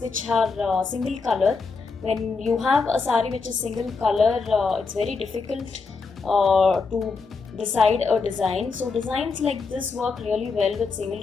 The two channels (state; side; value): quieter; right; 4.6 dB